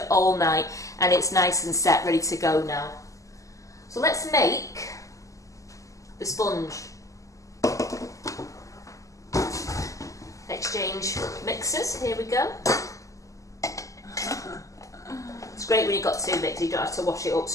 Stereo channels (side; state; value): right; late; 0.16 ms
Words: all night, and it's nice and set, ready to go now. So let's make the sponge. Exchange mixers. Here we go. It's great when you've got 2 mixers. You don't have to wash it up